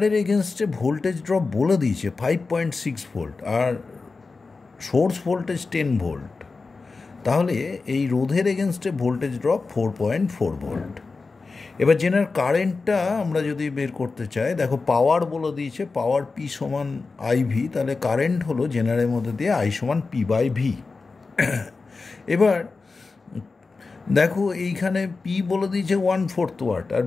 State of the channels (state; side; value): quieter; right; 4.1 dB